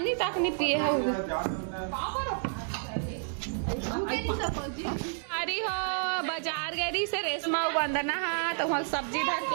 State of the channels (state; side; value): silent; left; digital silence